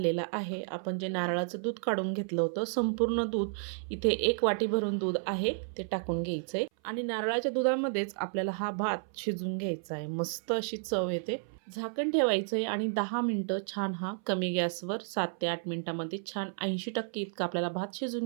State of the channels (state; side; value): silent; left; 56 dB below the other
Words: आहे. आपण जे नारळाचं दूध काढून घेतलं होतं, संपूर्ण दूध इथे 1 वाटी भरून दूध आहे ते टाकून घ्यायचं आहे. आणि नारळाच्या दुधामध्येच आपल्याला हा भात शिजवून घ्यायचा आहे. मस्त अशी चव येते. झाकण ठेवायचं आहे आणि 10 मिनटं छान हा कमी गॅसवर 7 ते 8 मिनिटांमध्ये छान 80% इतका आपल्याला भात